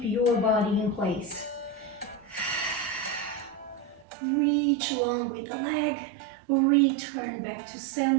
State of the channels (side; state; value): left; drops out; at 4.0 s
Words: your body in place. Reach along with the leg. Return back to